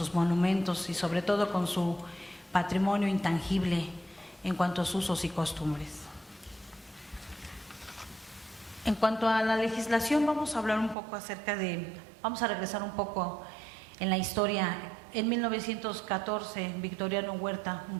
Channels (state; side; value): drops out; left; at 11.0 s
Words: monumentos y sobre todo con su patrimonio intangible en cuanto a sus usos y costumbres. En cuanto a la legislación, vamos a hablar un poco vamos a regresar un poco en la historia. En 1914, Victoriano Huerta,